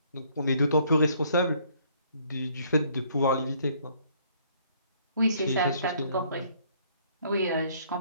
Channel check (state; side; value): inverted; both; correlation -0.63